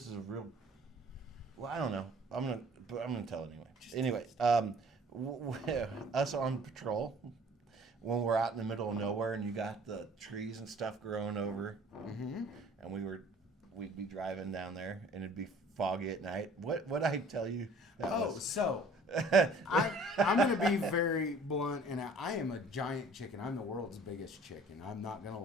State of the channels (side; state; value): both; normal; correlation 0.52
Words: is a real. Well, I don't know. I'm gonna tell it anyway. Us on patrol when we're out in the middle of nowhere and you got the trees and stuff growing over, Mm-hmm. and we'd be driving down there and it'd be foggy at night. What I tell you? So I'm going to be very blunt, and I am a giant chicken. I'm the world's biggest chicken. I'm not going to